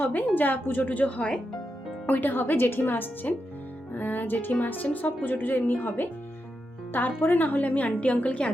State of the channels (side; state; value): both; normal; correlation 0.86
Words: হবে, যা পুজো টুজো হয় ওইটা হবে। জেঠিমা আসছেন, সব পুজো টুজো এমনি হবে। তারপরে না হলে আমি আন্টি আঙ্কেলকে